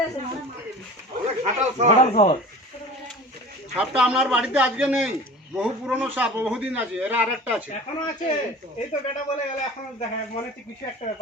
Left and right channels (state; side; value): normal; both; correlation 0.39